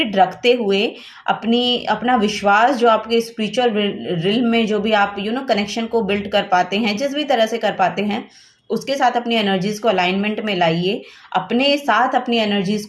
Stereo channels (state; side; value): identical; both; correlation 1.00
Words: रखते हुए, अपना विश्वास जो आपके स्पिरिचुअल रिल्म में जो भी आप कनेक्शन को बिल्ड कर पाते हैं, जिस भी तरह से कर पाते हैं, उसके साथ अपनी एनर्जीज को अलाइनमेंट में लाइए। अपने साथ अपनी एनर्जीज